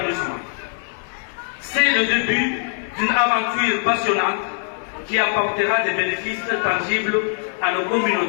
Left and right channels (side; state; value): right; silent; 62 dB below the other